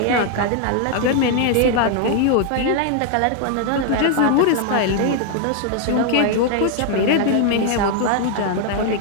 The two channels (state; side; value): different; both; correlation 0.00